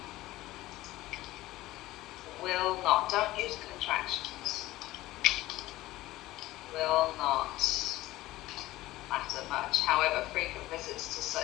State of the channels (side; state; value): right; quieter; 17.1 dB